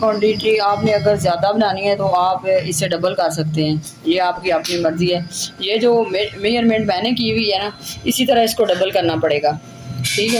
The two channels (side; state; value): both; identical; correlation 1.00